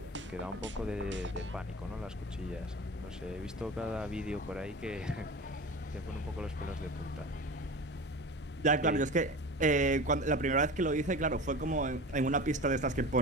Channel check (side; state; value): both; normal; correlation 0.33